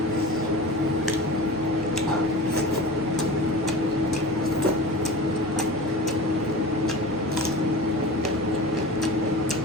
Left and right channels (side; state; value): both; normal; correlation 0.34